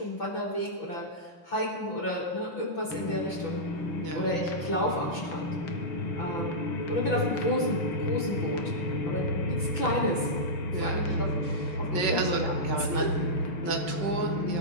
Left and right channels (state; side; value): late; right; 6.0 ms